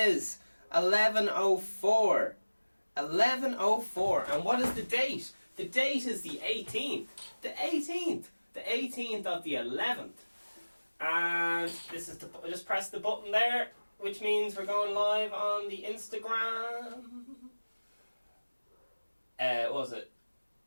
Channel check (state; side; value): inverted; both; correlation -1.00